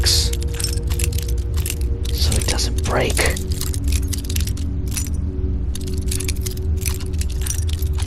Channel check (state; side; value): identical; both; correlation 1.00